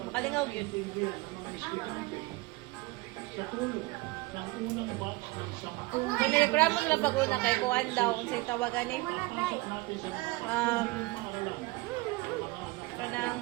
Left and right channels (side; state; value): left; quieter; 21.6 dB